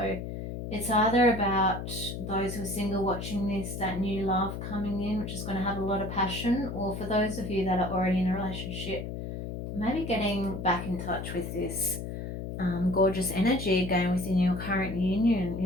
it's either about those who are single watching this, that new love coming in, which is going to have a lot of passion, or for those of you that are already in a relationship, maybe getting back in touch with this gorgeous energy again within your current union,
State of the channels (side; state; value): left; noise; hum, 6 dB below the sound